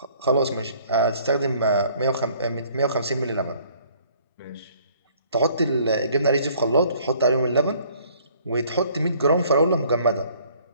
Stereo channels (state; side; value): inverted; both; correlation -0.58